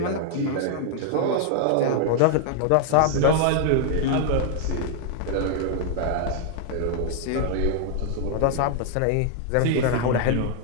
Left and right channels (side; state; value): both; different; correlation 0.00